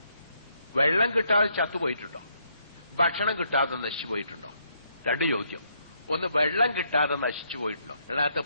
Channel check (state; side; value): inverted; both; correlation -0.73